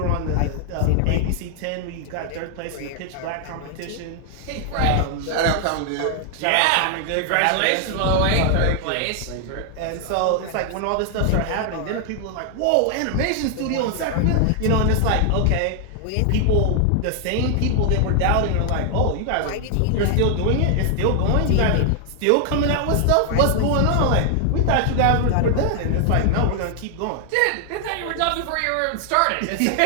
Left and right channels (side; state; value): both; different; correlation 0.00